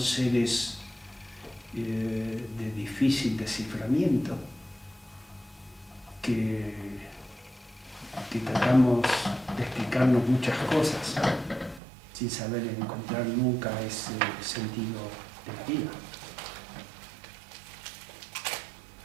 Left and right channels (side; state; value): left; drops out; at 11.8 s